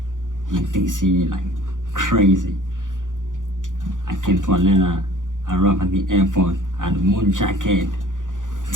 in DC, like crazy. I came to Atlanta. I arrived at the airport. I had a moon jacket,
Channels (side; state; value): left; late; 0.88 ms